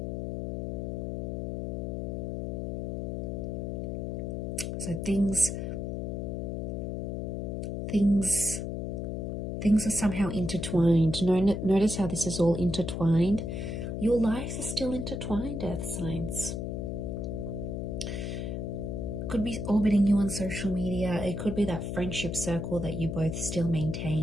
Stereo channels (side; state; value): left; noise; hum, 3 dB below the sound